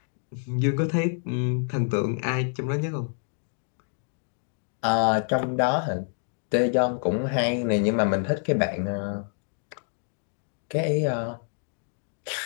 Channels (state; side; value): silent; right; 57 dB below the other